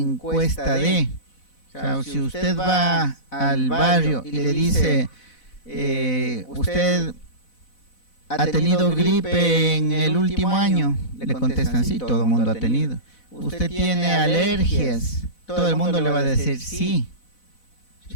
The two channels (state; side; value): late; right; 4.0 ms